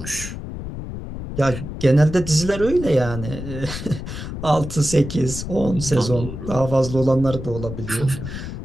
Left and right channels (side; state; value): left; noise; rumble, 8 dB below the sound